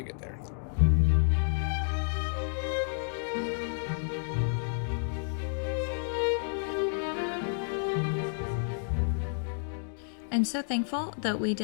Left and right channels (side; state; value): right; silent; digital silence